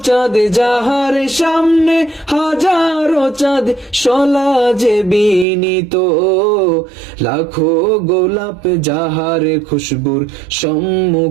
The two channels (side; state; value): left; drops out; at 5.5 s